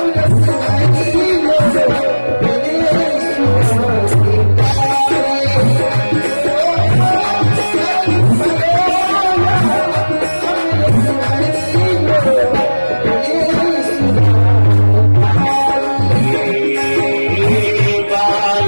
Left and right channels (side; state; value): both; inverted; correlation -1.00